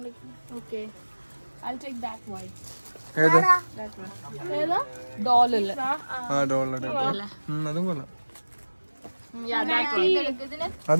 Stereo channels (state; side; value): inverted; both; correlation -1.00